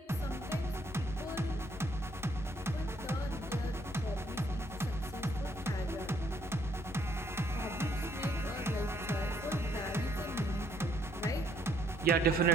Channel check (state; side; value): normal; both; correlation 0.68